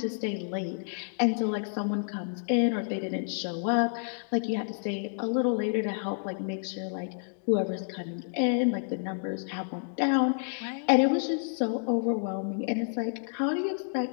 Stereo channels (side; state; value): right; silent; digital silence